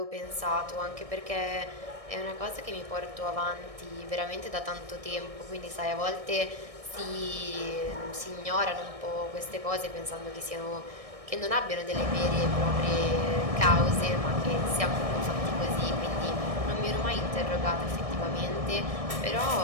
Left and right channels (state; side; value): late; left; 1.6 ms